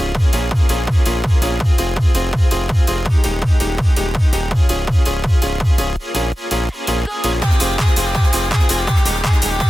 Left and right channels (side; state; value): both; normal; correlation 0.94